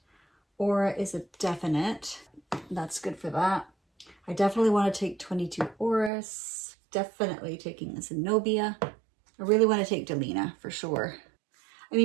Aura is a definite. That's good for that. I definitely want to take 22 Orris. Definitely taking Zenobia. I really want to take Delina for sure. I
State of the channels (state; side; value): drops out; left; at 6.1 s